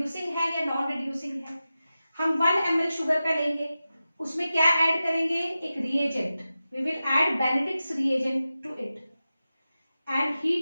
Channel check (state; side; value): inverted; both; correlation -0.93